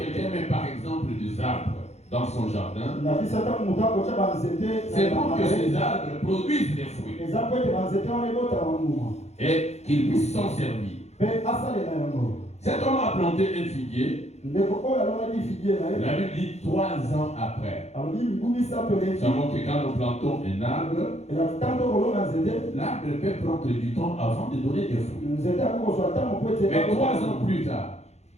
met par exemple des arbres dans son jardin, c'est pour que ces arbres produisent des fruits et qu'ils puissent s'en servir. Cet homme a planté un figuier. La Bible dit 3 ans après. Ça montre que quand nous plantons un arbre, l'arbre peut prendre du temps avant de donner des fruits. Mais 3 ans plus tard,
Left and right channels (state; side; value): late; right; 0.32 ms